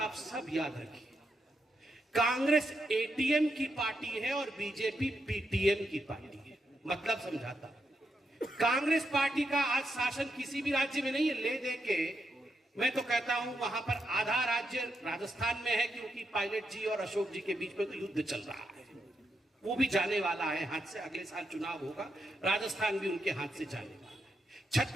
सब याद रखिए, कांग्रेस एटीएम की पार्टी है और बीजेपी पीटीएम की पार्टी है। मतलब समझाता, कांग्रेस पार्टी का आज शासन किसी भी राज्य में नहीं है। ले दे के मैं तो कहता हूं वहां पर आधा राज्य राजस्थान में है, क्योंकि पायलट जी और अशोक जी के बीच में तो युद्ध चल रहा है, वो भी जाने वाला है हाथ से। अगले साल चुनाव होगा, राजस्थान भी उनके हाथ से जाने वाला है,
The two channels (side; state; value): both; normal; correlation 0.82